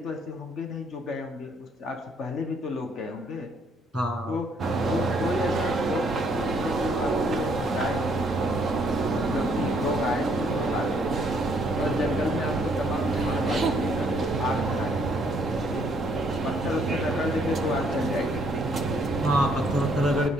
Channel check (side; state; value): both; normal; correlation 0.67